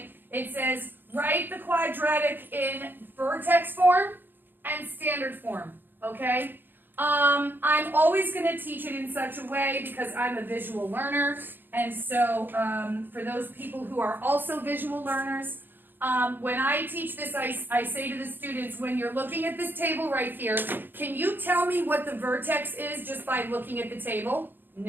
It says write the quadratic in vertex form and standard form, okay? I'm always going to teach it in such a way because I'm a visual learner, and so for those people who are also visual learners, when I teach this, I say to the students, when you're looking at this table right here, can you tell me what the vertex is just by looking at the table?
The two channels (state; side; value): late; left; 0.095 ms